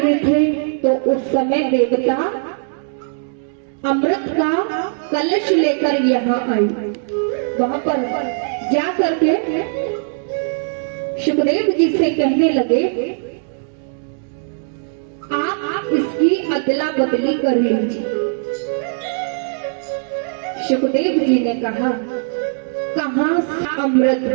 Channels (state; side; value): silent; left; digital silence